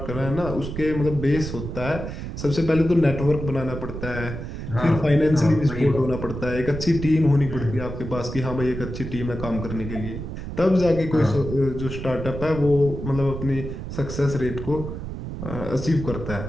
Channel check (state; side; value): noise; right; rumble, 7 dB below the sound